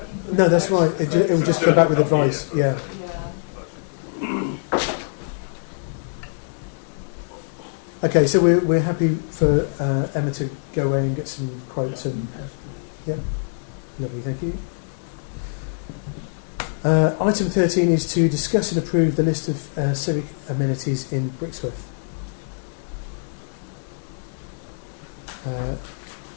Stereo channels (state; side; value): silent; right; digital silence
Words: group. No, that's right. It will just come back with advice. Yeah. Yeah. Okay, so we're happy for Emma to go away and get some quotes and yeah, lovely, thank you. Item 13 is to discuss and approve the list of civic amenities in Brixworth.